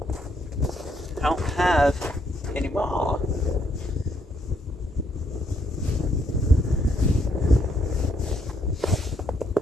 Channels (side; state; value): both; normal; correlation 0.73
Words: I don't have any more.